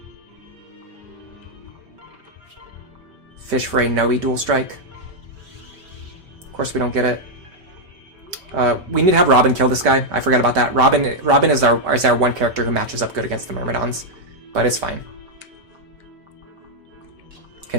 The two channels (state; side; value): late; left; 5.2 ms